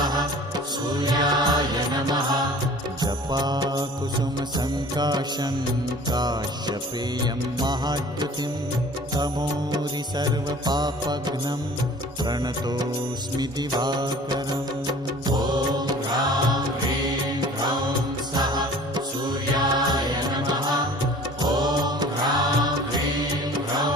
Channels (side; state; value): both; normal; correlation 0.46